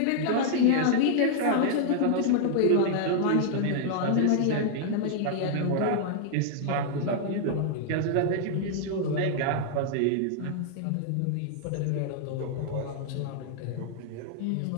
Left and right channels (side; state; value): both; different; correlation -0.01